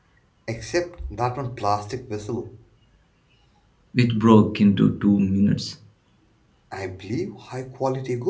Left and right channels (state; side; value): identical; both; correlation 1.00